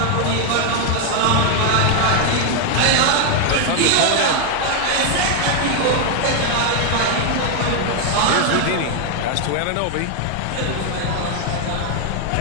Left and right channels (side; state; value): both; different; correlation 0.01